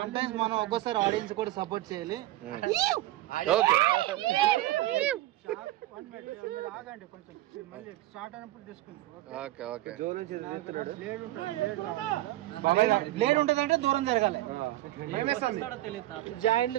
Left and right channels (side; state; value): left; quieter; 16.0 dB